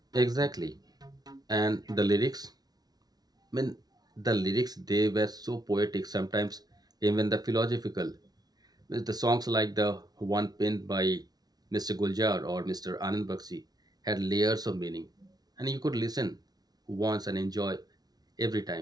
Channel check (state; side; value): late; left; 0.19 ms